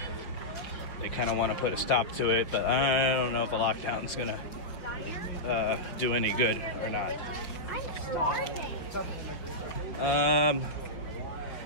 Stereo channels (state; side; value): late; right; 5.4 ms